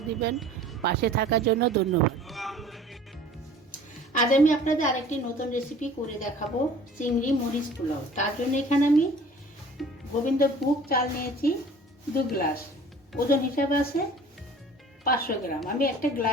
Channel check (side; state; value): both; normal; correlation 0.48